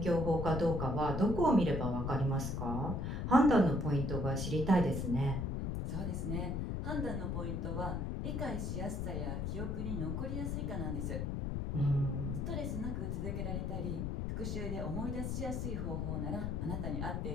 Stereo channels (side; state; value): left; noise; rumble, 1 dB below the sound